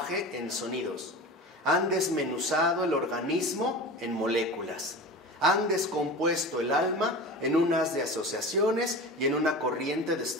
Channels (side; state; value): both; normal; correlation 0.32